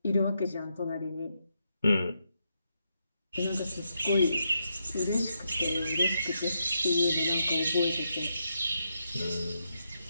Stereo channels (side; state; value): both; inverted; correlation -0.82